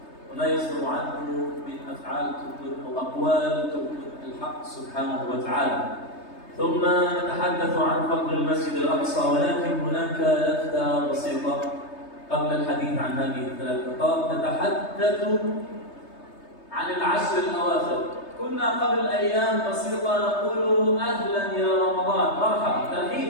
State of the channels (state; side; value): late; right; 3.3 ms